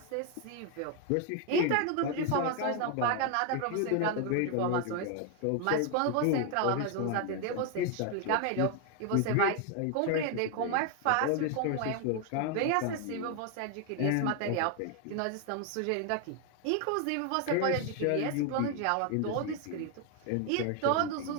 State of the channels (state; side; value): different; both; correlation 0.01